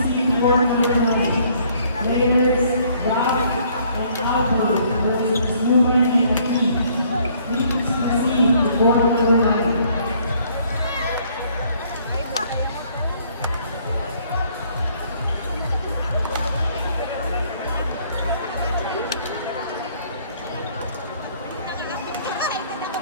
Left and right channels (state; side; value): inverted; both; correlation -0.63